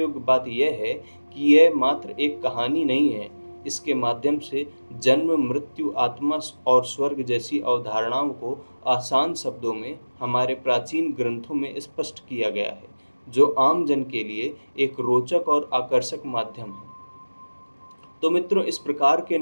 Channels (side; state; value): both; inverted; correlation -1.00